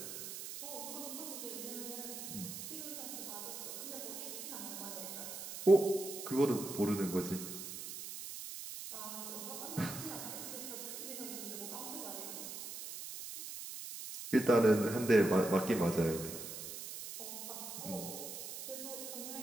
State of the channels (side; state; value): right; noise; hiss, 8 dB below the sound